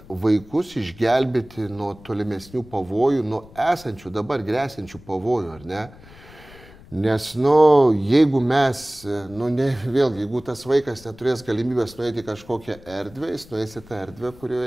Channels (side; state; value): left; noise; rumble, 21 dB below the sound